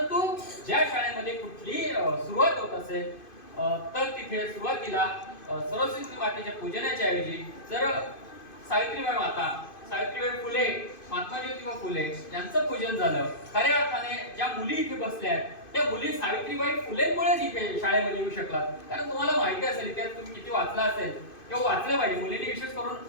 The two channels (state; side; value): late; right; 2.5 ms